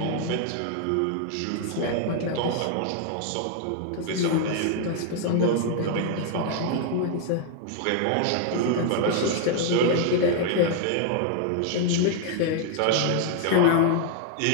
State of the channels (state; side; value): different; both; correlation 0.00